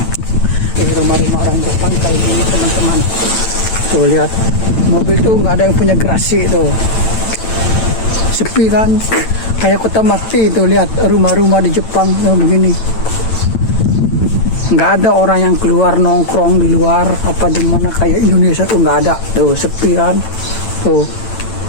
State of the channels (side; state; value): right; late; 9.0 ms